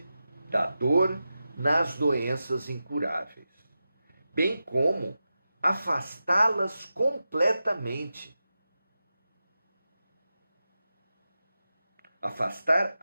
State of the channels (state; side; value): inverted; both; correlation -0.91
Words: da dor nas doenças incuráveis, bem como afastá-las completamente. Afastar